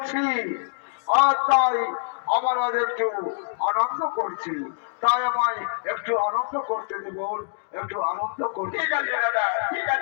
আর তাই আমার আজ একটু আনন্দ করছি তাই আমায় একটু আনন্দ করতে দেব একটু আনন্দ করতে ঠিক আছে দাদা ঠিক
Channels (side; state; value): right; silent; digital silence